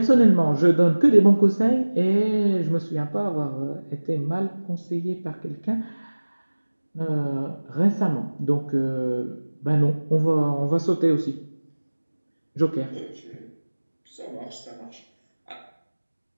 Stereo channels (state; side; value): inverted; both; correlation -1.00